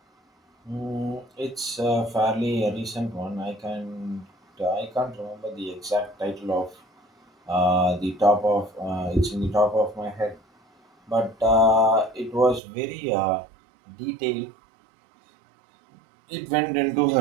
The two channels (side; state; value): left; drops out; at 12.6 s